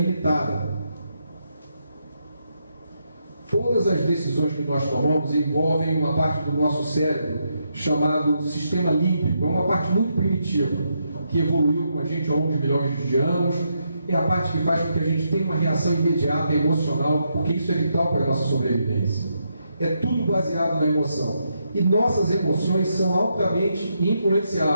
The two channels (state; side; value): inverted; both; correlation -0.80